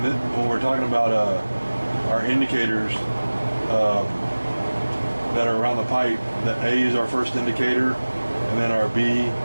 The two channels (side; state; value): both; inverted; correlation -1.00